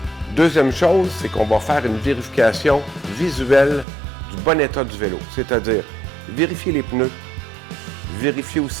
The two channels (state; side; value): drops out; left; at 3.9 s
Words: Deuxième chose, c'est qu'on va faire une vérification visuelle du bon état du vélo, c'est-à-dire vérifier les pneus, vérifier